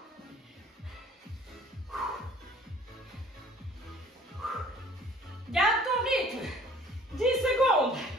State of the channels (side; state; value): both; normal; correlation 0.53